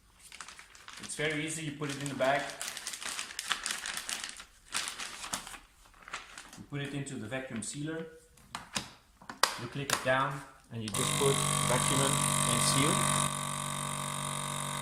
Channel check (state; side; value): identical; both; correlation 1.00